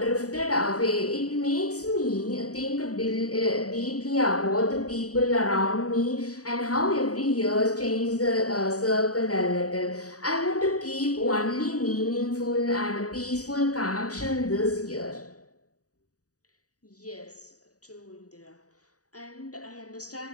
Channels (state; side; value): late; right; 0.67 ms